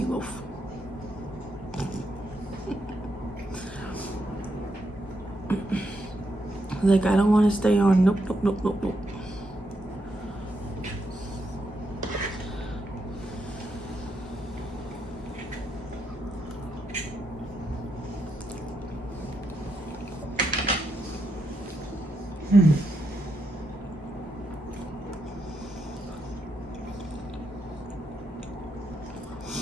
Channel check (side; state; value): both; normal; correlation 0.81